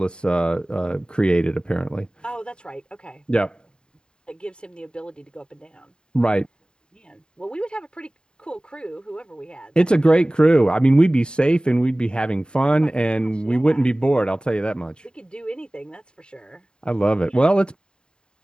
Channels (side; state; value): right; late; 0.049 ms